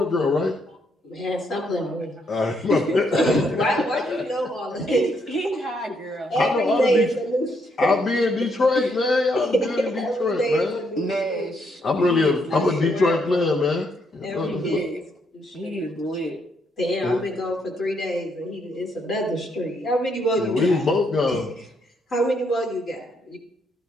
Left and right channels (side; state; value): both; normal; correlation 0.74